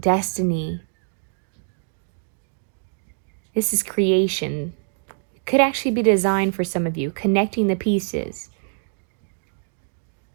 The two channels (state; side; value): silent; left; digital silence